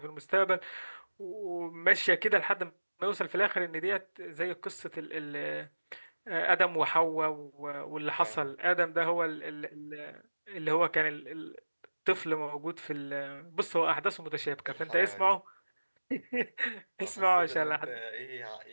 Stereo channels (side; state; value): both; inverted; correlation -1.00